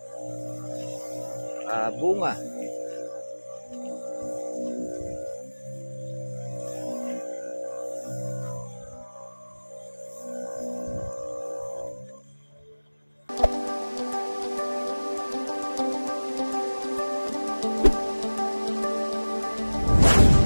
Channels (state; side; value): inverted; both; correlation -1.00